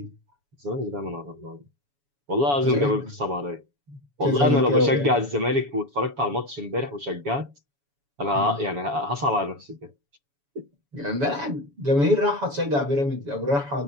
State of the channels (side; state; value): left; late; 7.1 ms